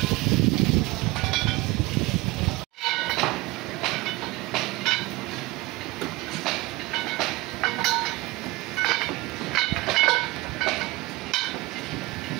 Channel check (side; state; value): left; quieter; 21.5 dB